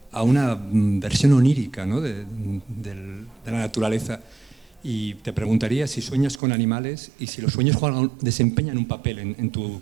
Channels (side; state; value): left; drops out; at 6.4 s